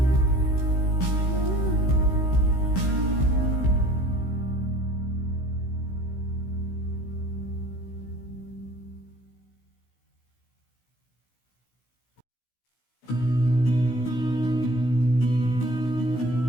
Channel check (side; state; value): right; late; 16 ms